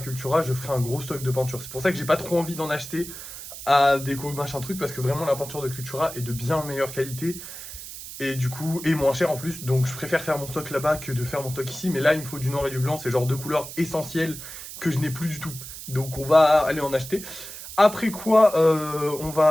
je ferai un gros stock de peinture. C'est pour ça que j'ai pas trop envie d'en acheter à déco machin truc, parce que vraiment la peinture de Cultura est de bien meilleure qualité. Et du coup, et moins cher en plus. Donc je préfère faire mon stock là-bas que de faire mon stock ici. Mais là, il me faut du noir et du blanc, c'est genre deux couleurs essentielles que je n'ai plus du tout. Donc on va aller en acheter. Après quoi, on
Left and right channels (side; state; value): right; noise; hiss, 11 dB below the sound